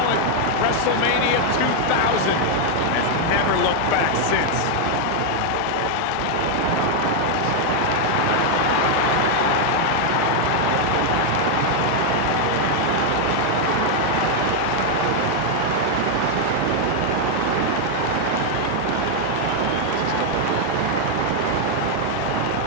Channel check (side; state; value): both; different; correlation 0.00